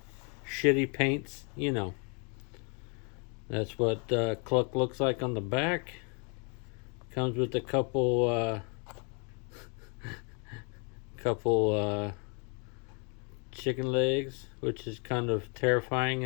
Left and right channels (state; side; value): quieter; right; 36.4 dB